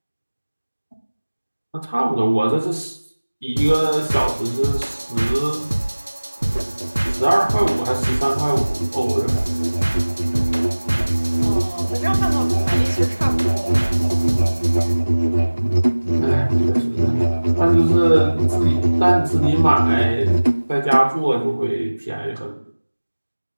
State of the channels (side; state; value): both; inverted; correlation -1.00